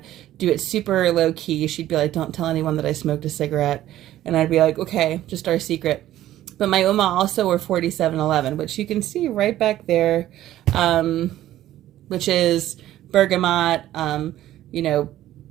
do it super low key. She'd be like, "Don't tell anyone that I smoked a cigarette." And I'd be like, "Okay, just our secret." But my Oma also wore 4711, which you can see right back there, which is bergamot,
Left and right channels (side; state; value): left; quieter; 13.5 dB